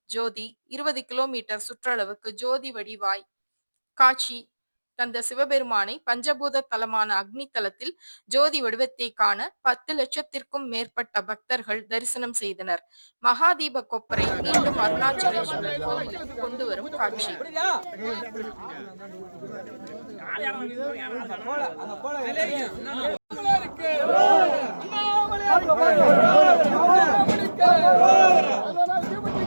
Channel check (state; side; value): inverted; both; correlation -1.00